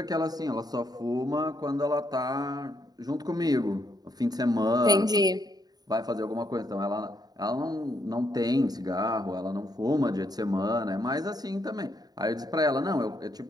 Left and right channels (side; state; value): left; late; 0.19 ms